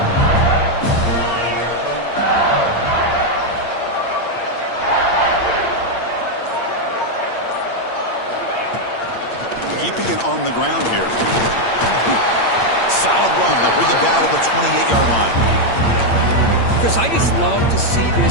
Keeping it on the ground here. Solid run. They'll bring it down to the 28-yard line. Chris, I just love to see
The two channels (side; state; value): right; late; 8.7 ms